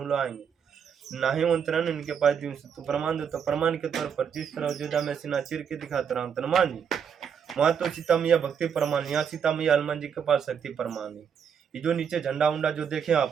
लोग आएंगे नाही मंत्रण इनके पास दिन से तो प्रमाण दो। तो प्रमाण के तौर पर जिस तरह अयोध्या में सीना चीर के दिखाता रहा हनुमान जी, वहाँ तो सीता मैया भक्ति प्रमाण, यहाँ सीता मैया हनुमान जी के पास शक्ति प्रमाण है। ये जो नीचे झंडा उंडा जो देखे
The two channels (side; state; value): left; quieter; 7.4 dB